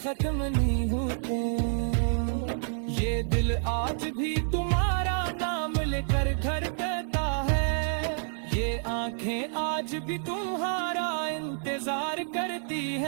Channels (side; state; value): left; silent; digital silence